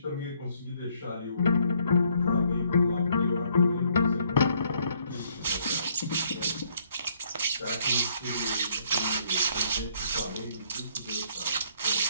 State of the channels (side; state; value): both; inverted; correlation -0.67